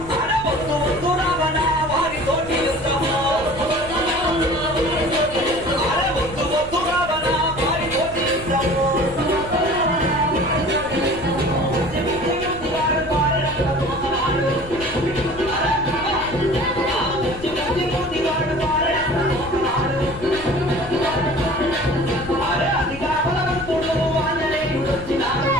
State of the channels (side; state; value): left; noise; rumble, 15 dB below the sound